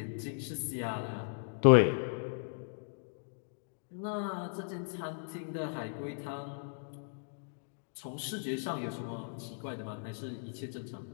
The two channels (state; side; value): silent; right; digital silence